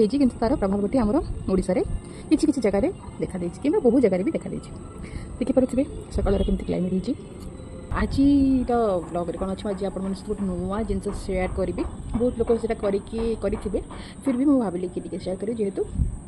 कि तार प्रभाव गोटे आमर ओडिशा रे किसी किसी जगह देखा देछि कि बहुत जगह भी देखा देछि देखिपे सकाल केमती क्लाइमेट होती आज ब्लॉग रे कौन अच्छे आज आप गोटे नुआ जिन सेयार करी बहुत लोग से करेंगे फिर भी मुझे भाविली कि शेयर करी जेहेतु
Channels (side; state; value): both; identical; correlation 1.00